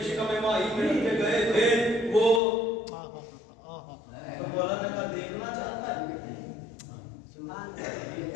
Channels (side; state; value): right; drops out; at 2.4 s